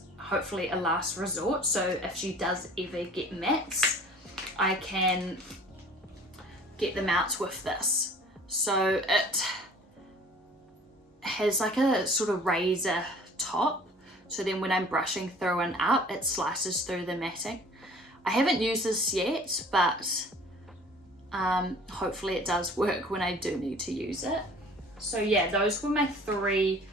hopefully a last resort, so if she does ever get mats, I can get them out with this. So it has like a sort of razor top, so then when I'm brushing through and up, it slices through the matting. I haven't used this yet, but hopefully it does work when I do need to use it. So yeah, those were my 3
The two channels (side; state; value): both; normal; correlation 0.48